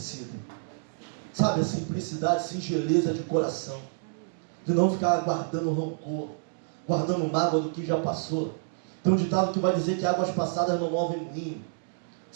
Sabe, a simplicidade, singeleza de coração. De não ficar guardando rancor, guardando mágoa do que já passou. Tem um ditado que vai dizer que águas passadas não movem moinho.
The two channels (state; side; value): silent; left; digital silence